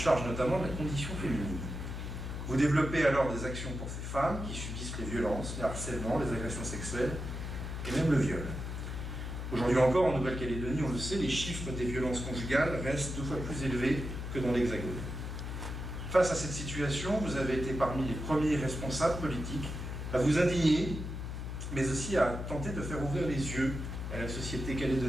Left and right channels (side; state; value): left; noise; hum, 6 dB below the sound